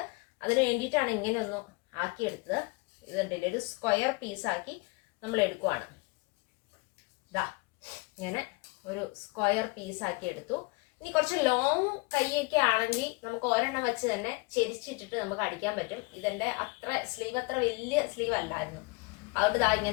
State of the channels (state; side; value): quieter; right; 28.0 dB